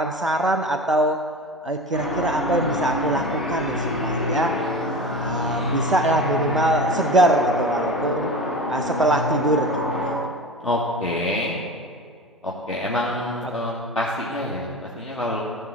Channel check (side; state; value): both; normal; correlation 0.32